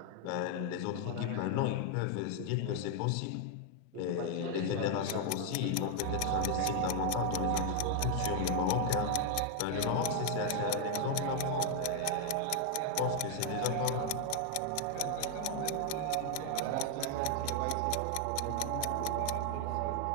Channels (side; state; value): both; different; correlation 0.00